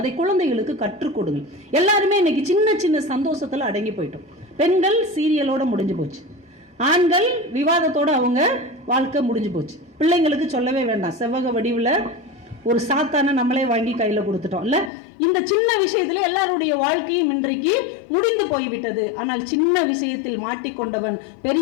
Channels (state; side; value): drops out; right; at 14.9 s